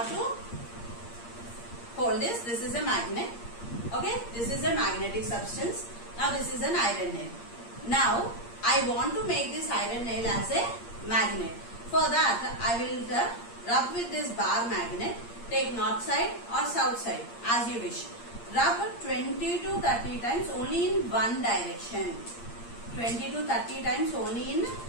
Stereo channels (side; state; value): right; late; 8.6 ms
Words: to hold this. This is a magnet. Okay, this is a magnetic substance. Now this is an iron nail. Now I want to make this iron nail as a magnet. For that I will rub with this bar magnet. Take north side or south side as you wish. Rub 20 to 30 times only in one direction. 20 to 30 times only in